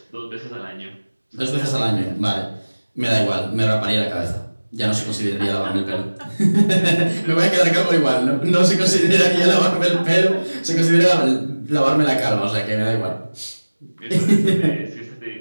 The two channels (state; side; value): inverted; both; correlation -1.00